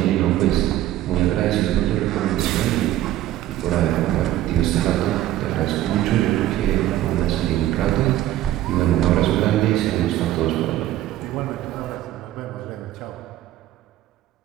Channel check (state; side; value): quieter; left; 13.8 dB